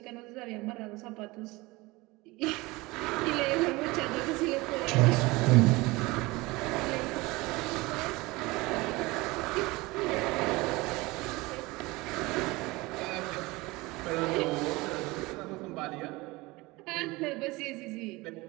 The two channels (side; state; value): left; quieter; 22.2 dB